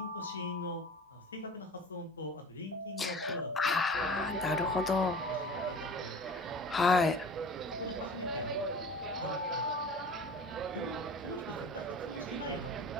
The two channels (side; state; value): both; normal; correlation 0.39